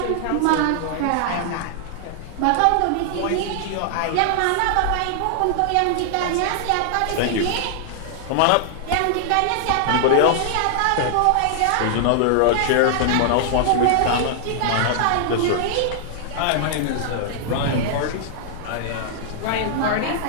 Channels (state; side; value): different; both; correlation 0.00